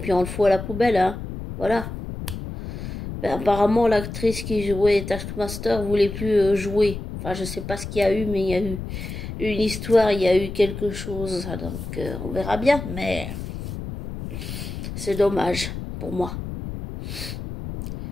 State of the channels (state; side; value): noise; left; rumble, 8 dB below the sound